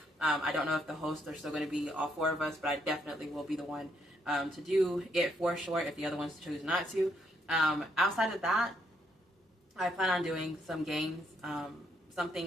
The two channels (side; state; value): both; normal; correlation 0.73